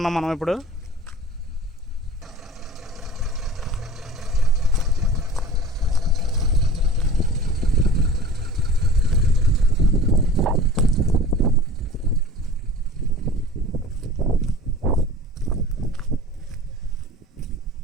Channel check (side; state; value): both; normal; correlation 0.41